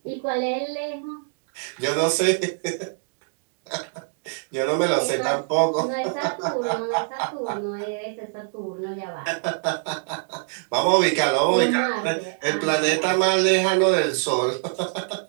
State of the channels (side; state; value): left; silent; digital silence